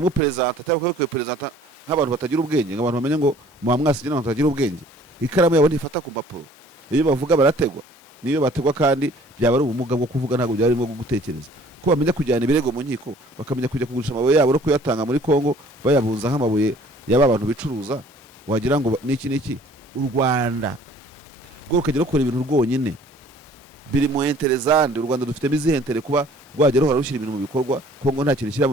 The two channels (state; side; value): normal; both; correlation 0.54